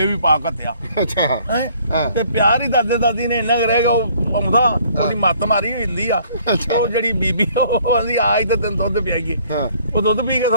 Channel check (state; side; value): inverted; both; correlation -0.59